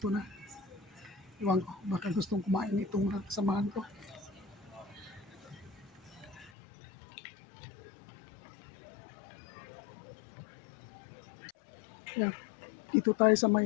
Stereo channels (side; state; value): right; drops out; at 6.5 s